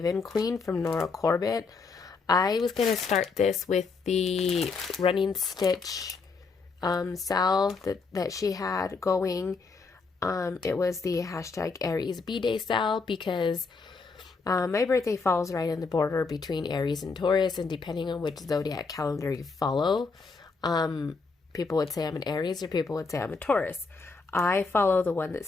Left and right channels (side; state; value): right; quieter; 4.5 dB